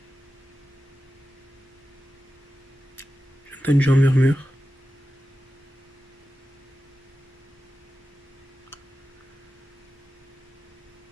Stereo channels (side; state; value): both; normal; correlation 0.93